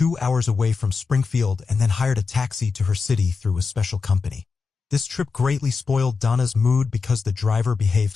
hours away from Springfield, and then hired a taxi to her city through a special company. This trip greatly spoiled Donna's mood because the driver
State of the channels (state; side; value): quieter; right; 4.9 dB